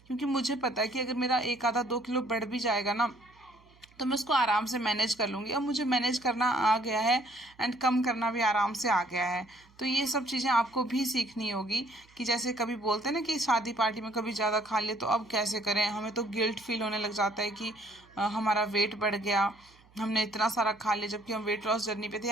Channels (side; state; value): right; noise; hum, 29 dB below the sound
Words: क्योंकि मुझे पता है कि अगर मेरा 1 आधा 2 किलो बढ़ भी जाएगा ना, तो मैं उसको आराम से मैनेज कर लूँगी। अब मुझे मैनेज करना आ गया है एंड कम करना भी आराम से आ गया है। तो ये सब चीज़ें आपको भी सीखनी होगी कि जैसे कभी बोलते हैं ना कि शादी पार्टी में कभी ज़्यादा खा लिए तो अब कैसे करें। हमें तो गिल्ट फील होने लग जाता है कि हमारा वेट बढ़ गया, हमने इतना सारा खा लिया, जबकि हम वेट लॉस जर्नी पे थे।